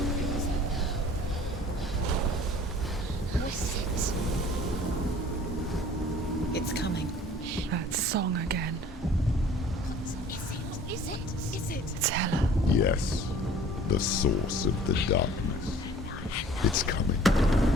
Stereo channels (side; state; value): both; normal; correlation 0.49